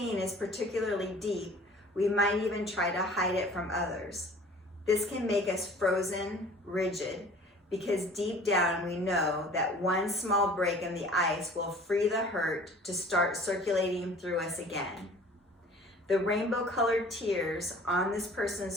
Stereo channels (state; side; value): normal; both; correlation 0.48